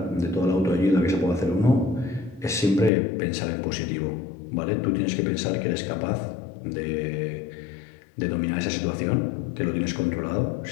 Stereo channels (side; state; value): right; drops out; at 2.9 s